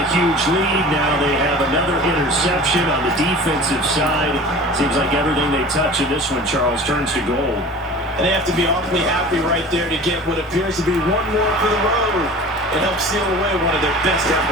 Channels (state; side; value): normal; both; correlation 0.40